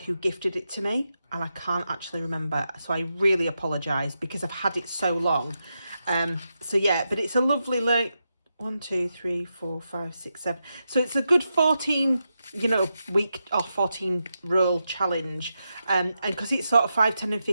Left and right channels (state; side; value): inverted; both; correlation -0.87